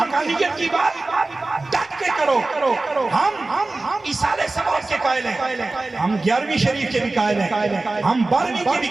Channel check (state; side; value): quieter; left; 3.2 dB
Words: کی بات ڈٹ کے کرو. ہم ایصال ثواب کے قائل ہیں, ہم 11ویں شریف کے بھی قائل ہیں, ہم 12ویں کے بھی